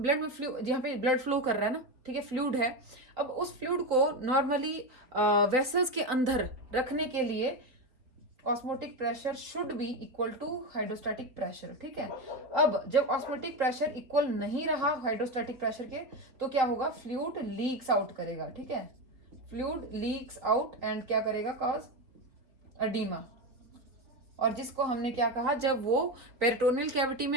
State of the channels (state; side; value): late; left; 3.5 ms